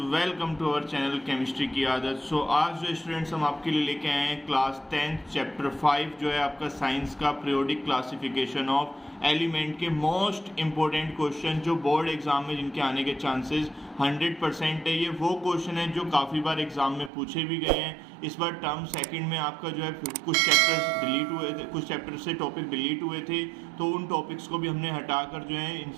welcome to our channel chemistry की आदत। आज जो स्टूडेंट्स हम आपके लिए लेके आए हैं क्लास 10 चैप्टर 5 जो है आपका साइंस का पीरियोडिक क्लासिफिकेशन ऑफ एलिमेंट के मोस्ट इंपॉर्टेंट क्वेश्चन जो बोर्ड एग्जाम में जिनके आने के चांसेस 100% है। ये वो क्वेश्चन है जो काफ़ी बार एग्जाम में पूछे भी गए हैं। इस बार टर्म सेकंड में आपका जो है कुछ चैप्टर्स डिलीट हुए थे, कुछ चैप्टर से टॉपिक डिलीट हुए थे, तो उन टॉपिक्स को भी हमने हटाकर जो है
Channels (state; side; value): drops out; left; at 17.1 s